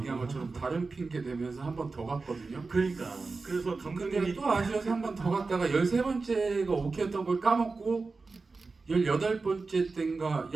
것처럼 다른 핑계 대면서 한 번 더 갔거든요. 그러니까 그래서 근데 감독님이 또 아쉬워서 한 번 더 갔다가 13번째가 오케이였던 걸 까먹고 18번째 때인가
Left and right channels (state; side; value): quieter; left; 4.0 dB